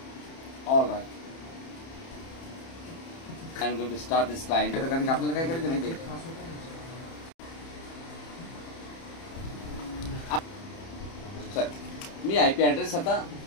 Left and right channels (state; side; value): late; right; 30 ms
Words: I am going to start this client. कारण की आपल्याला काय करायचं माहिती आहे, मी I P address आता